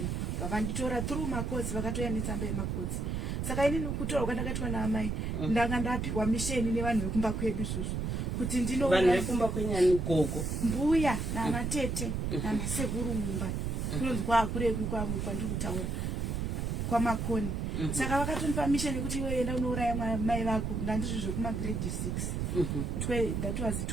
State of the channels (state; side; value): noise; right; rumble, 1 dB below the sound